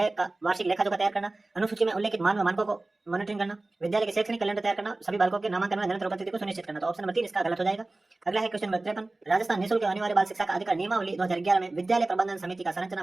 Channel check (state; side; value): quieter; left; 3.0 dB